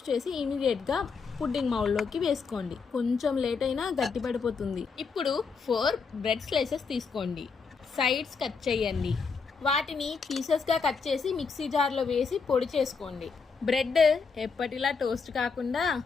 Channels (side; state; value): right; quieter; 5.1 dB